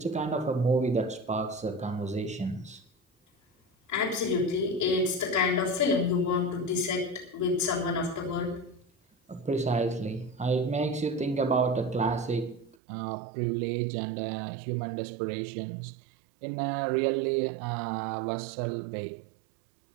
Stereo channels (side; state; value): left; drops out; at 12.8 s